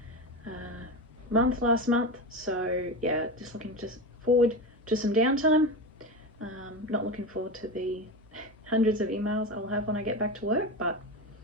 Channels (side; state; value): both; normal; correlation 0.22